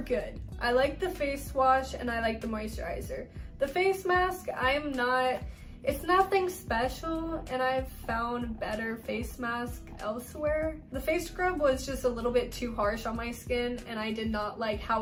I like the face wash and I like the moisturizer. The face mask, it's nothing special, and I've found better face masks elsewhere. The face scrub was just a little bit too harsh on my skin and I did not like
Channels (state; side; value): identical; both; correlation 1.00